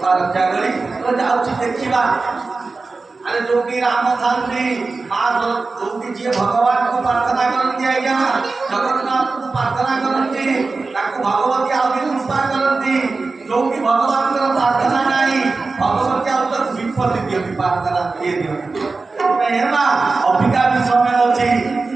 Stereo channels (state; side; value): quieter; left; 3.9 dB